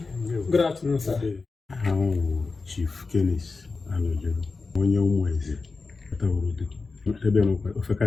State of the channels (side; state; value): right; quieter; 4.1 dB